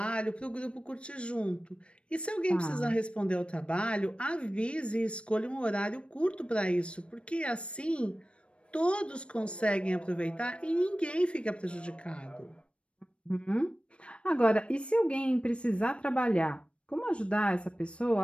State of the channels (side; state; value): right; late; 0.059 ms